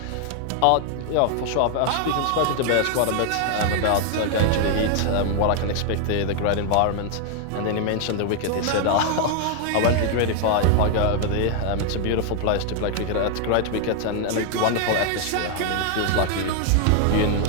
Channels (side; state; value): both; different; correlation 0.00